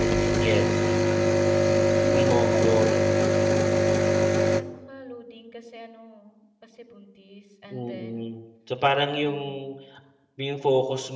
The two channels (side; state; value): both; identical; correlation 1.00